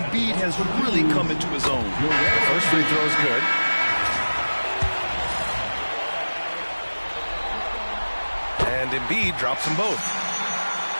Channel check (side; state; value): both; inverted; correlation -1.00